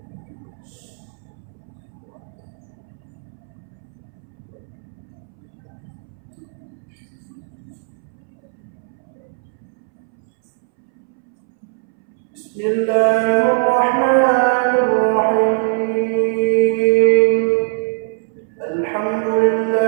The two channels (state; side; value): silent; left; 63 dB below the other